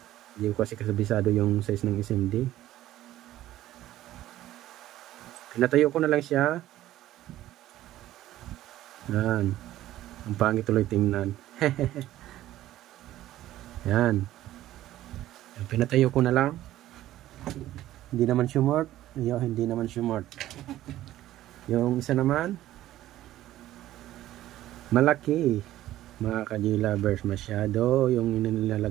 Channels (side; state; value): left; quieter; 14.2 dB